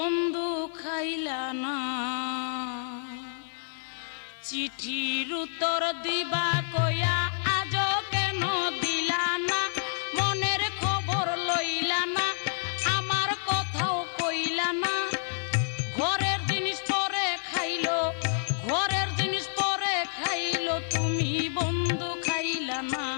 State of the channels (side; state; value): right; silent; 57 dB below the other